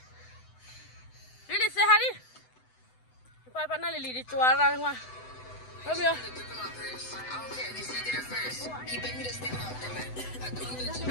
Lili sehari. Apa mana Lili di cuara rumah? Ramyo.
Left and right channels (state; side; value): late; right; 7.9 ms